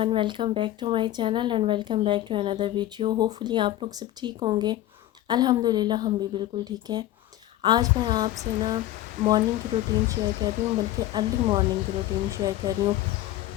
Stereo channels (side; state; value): right; quieter; 14.2 dB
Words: welcome back to my channel and welcome back to another video. Hopefully आप लोग सब ठीक होंगे। अल्हम्दुलिल्लाह हम भी बिल्कुल ठीक हैं। आज मैं आपसे ना मॉर्निंग की रूटीन शेयर कर रही हूँ, बल्कि अर्ली मॉर्निंग की रूटीन शेयर कर रही हूँ,